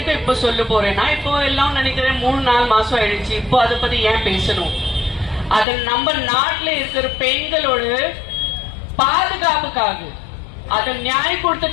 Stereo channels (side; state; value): right; drops out; at 5.7 s